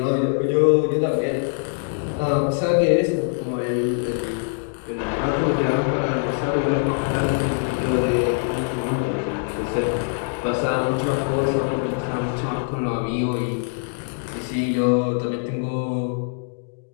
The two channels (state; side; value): silent; right; digital silence